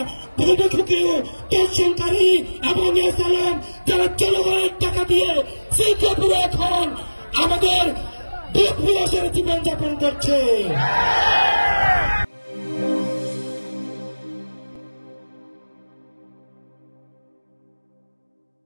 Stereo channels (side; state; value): both; inverted; correlation -1.00